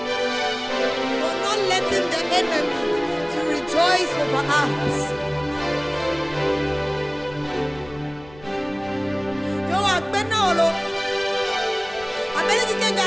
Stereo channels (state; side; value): noise; left; rumble, 23 dB below the sound